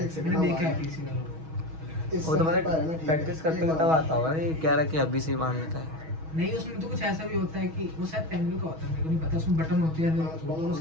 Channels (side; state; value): left; late; 6.3 ms